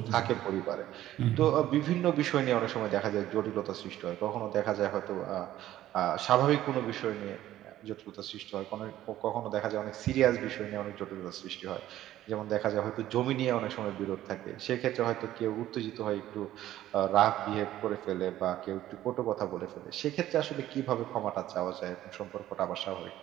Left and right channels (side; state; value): left; quieter; 13.5 dB